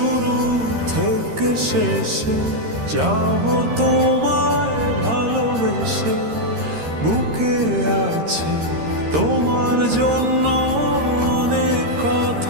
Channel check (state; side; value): late; left; 13 ms